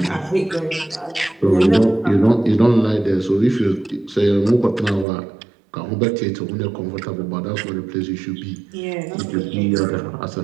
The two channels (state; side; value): drops out; left; at 5.1 s